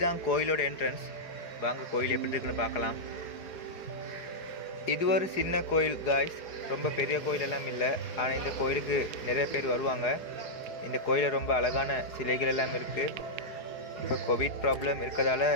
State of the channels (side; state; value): right; late; 4.8 ms